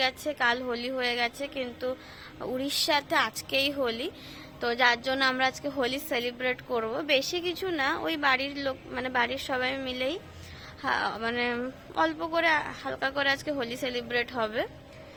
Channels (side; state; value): both; identical; correlation 1.00